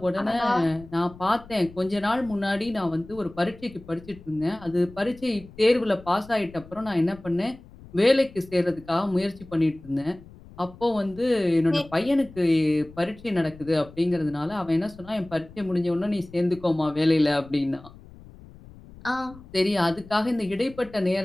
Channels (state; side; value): noise; left; rumble, 20 dB below the sound